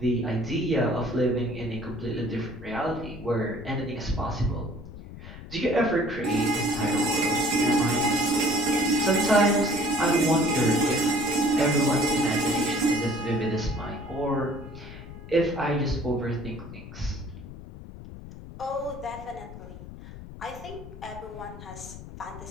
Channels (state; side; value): noise; left; rumble, 14 dB below the sound